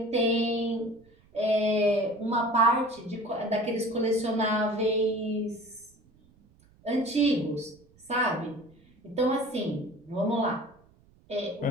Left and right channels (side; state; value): right; noise; rumble, 30 dB below the sound